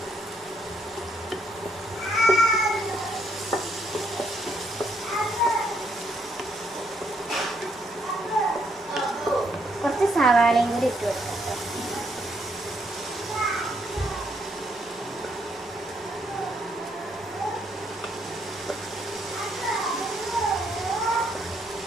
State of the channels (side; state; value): both; normal; correlation 0.73